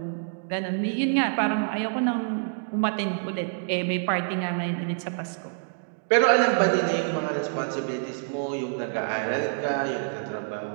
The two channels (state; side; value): silent; left; digital silence